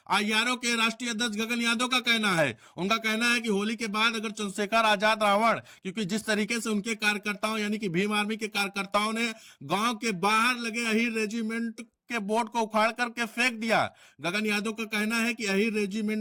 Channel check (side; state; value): both; identical; correlation 1.00